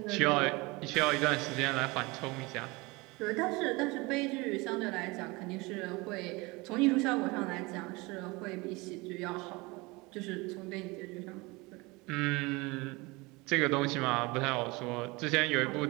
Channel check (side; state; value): left; quieter; 24.4 dB